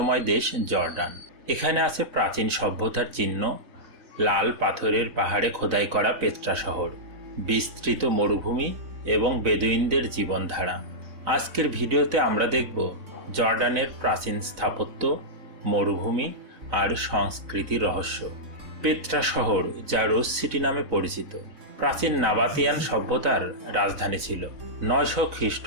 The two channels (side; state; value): left; late; 3.9 ms